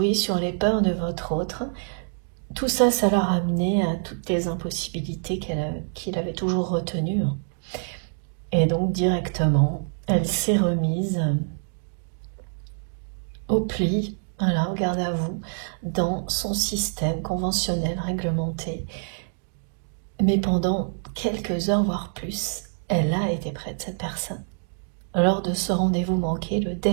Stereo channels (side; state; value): left; silent; digital silence